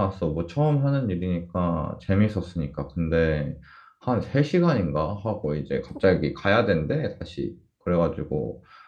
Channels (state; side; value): identical; both; correlation 1.00